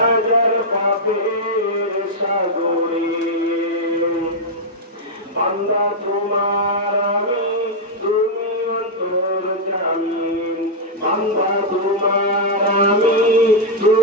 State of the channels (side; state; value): both; normal; correlation -0.04